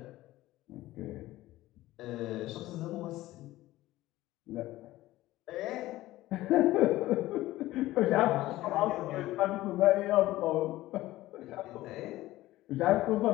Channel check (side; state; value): right; quieter; 16.6 dB